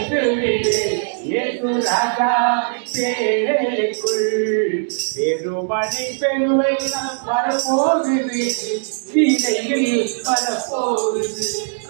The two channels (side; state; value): left; silent; digital silence